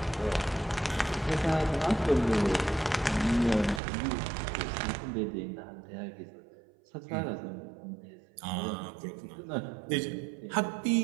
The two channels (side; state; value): left; drops out; at 3.8 s